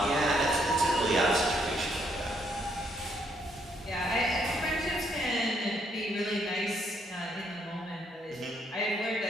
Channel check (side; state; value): both; normal; correlation 0.72